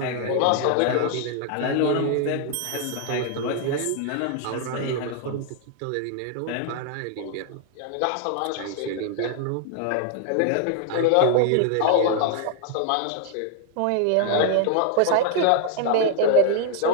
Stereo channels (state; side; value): different; both; correlation 0.00